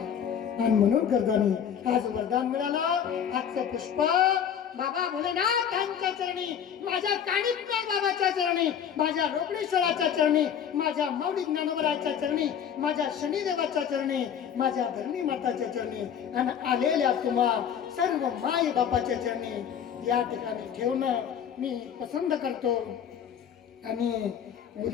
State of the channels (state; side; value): quieter; right; 8.4 dB